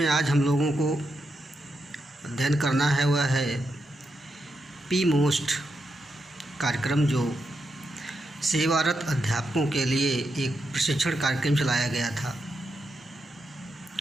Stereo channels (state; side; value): normal; both; correlation 0.84